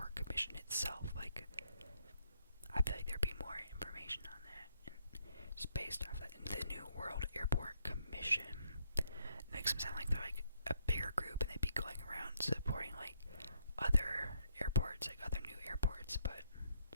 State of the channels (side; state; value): both; inverted; correlation -0.72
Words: Commission itself. Like, I feel like there'd be more information on that. Just based off that, the New World Airport Commission makes them sound like they're like a bigger group and they'd be going around supporting like other airports, like other new airports. But